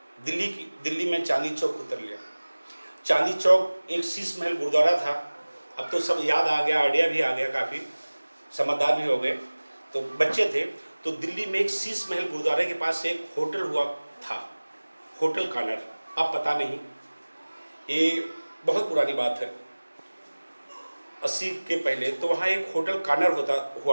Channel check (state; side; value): inverted; both; correlation -1.00